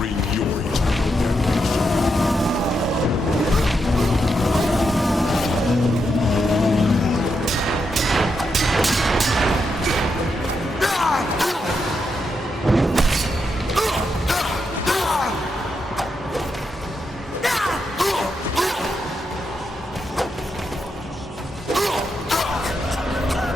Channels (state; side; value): normal; both; correlation 0.83